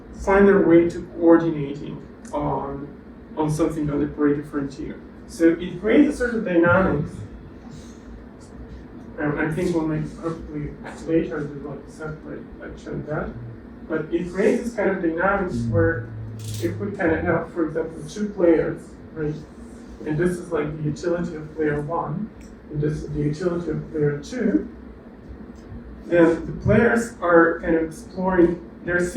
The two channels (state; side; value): identical; both; correlation 1.00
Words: find their way to coordinating on something on the Pareto frontier. So it creates a sort of dynamics. I think we'll make hopefully later do like a separate lecture on that. But it creates this kind of dynamics where if we kind of have, for example, two players, right? And this is like the utility of player one, and this is the utility of player two, then the players are kind of exploring, they're